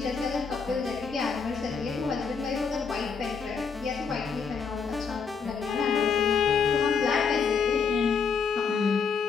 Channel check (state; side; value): quieter; right; 5.7 dB